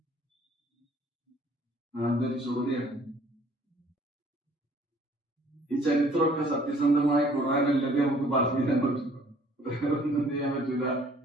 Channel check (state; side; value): normal; both; correlation 0.57